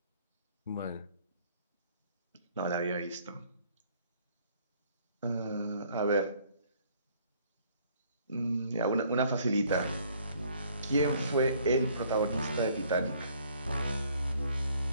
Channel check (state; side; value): inverted; both; correlation -0.61